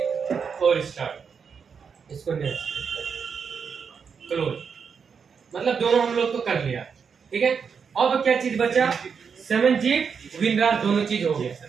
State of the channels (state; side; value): quieter; left; 6.3 dB